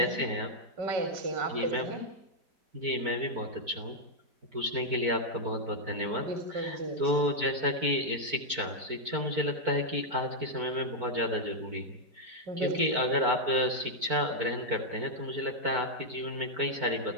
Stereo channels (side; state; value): left; late; 4.5 ms